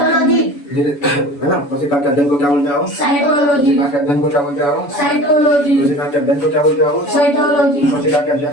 है ना? कोशिका के अध्ययन को क्या बोलते हो? साइटोलॉजी। कोशिका के अध्ययन को क्या बोलते हो? साइटोलॉजी। कोशिका के अध्ययन को क्या बोलते हो? साइटोलॉजी। कोशिका के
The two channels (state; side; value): late; right; 7.0 ms